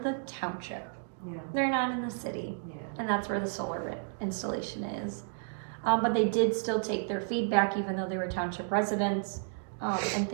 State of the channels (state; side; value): silent; left; digital silence